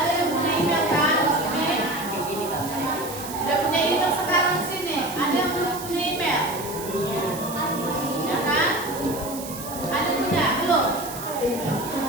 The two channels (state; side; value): noise; right; hiss, 11 dB below the sound